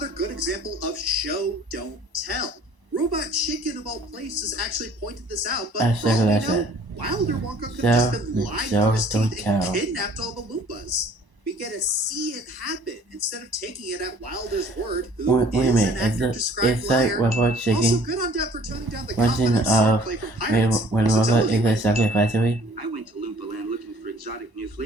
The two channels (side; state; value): left; late; 1.0 ms